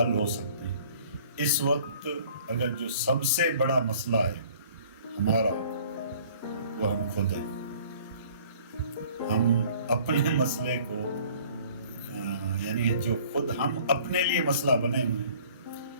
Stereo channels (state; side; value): inverted; both; correlation -0.53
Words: ہو سکتے ہیں. اس وقت اگر جو سب سے بڑا مسئلہ ہے ہمارا وہ ہم خود ہیں. ہم اپنے مسئلے کو یعنی جو خود ہم اپنے لیے مسئلہ بنے ہوئے ہیں,